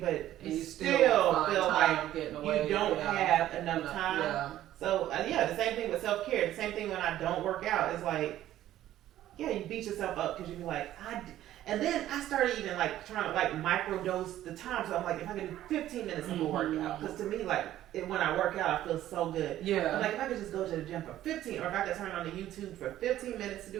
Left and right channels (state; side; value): quieter; left; 13.1 dB